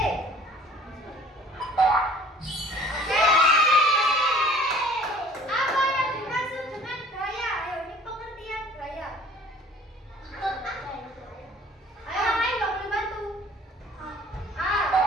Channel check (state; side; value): normal; both; correlation 0.50